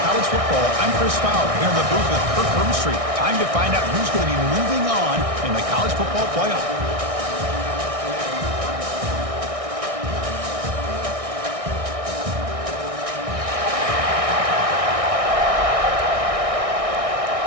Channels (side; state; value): left; late; 1.6 ms